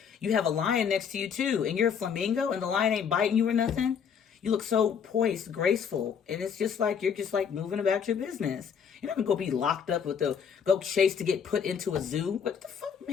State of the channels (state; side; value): quieter; right; 7.2 dB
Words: have a lion next to you too, and you're a flamingo, and the lion ain't biting you or nothing. You look so poised, graceful, and it's just like you're just like moving about your business. You're not gonna go be locked up with go chase to get put into a zoo. What the fuck,